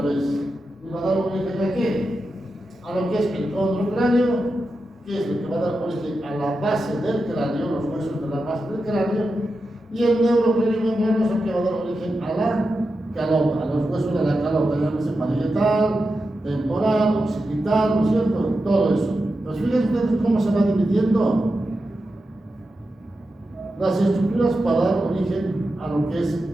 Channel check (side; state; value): both; normal; correlation 0.90